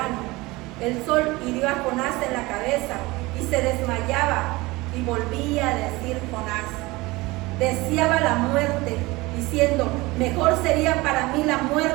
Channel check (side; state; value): left; quieter; 21.7 dB